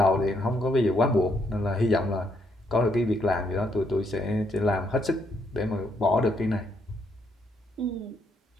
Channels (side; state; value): both; normal; correlation 0.74